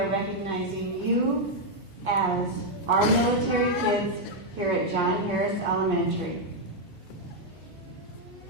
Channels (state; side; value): late; right; 3.0 ms